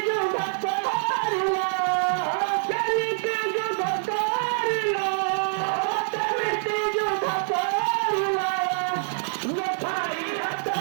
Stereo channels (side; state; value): left; silent; 61 dB below the other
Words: যুদ্ধ করিল কেমিতি যুদ্ধ করিল কেমিতি যুদ্ধ করিল নথাই হাত